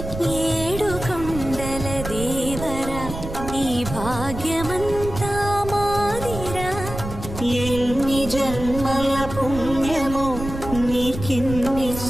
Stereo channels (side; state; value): right; noise; rumble, 9 dB below the sound